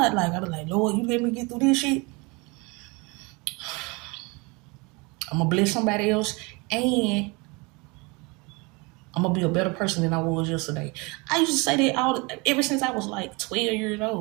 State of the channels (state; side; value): quieter; left; 27.5 dB